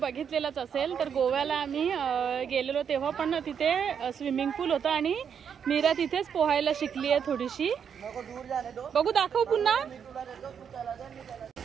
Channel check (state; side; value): quieter; left; 7.5 dB